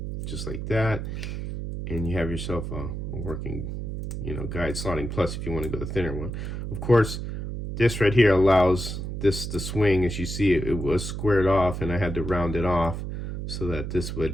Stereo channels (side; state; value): right; noise; hum, 5 dB below the sound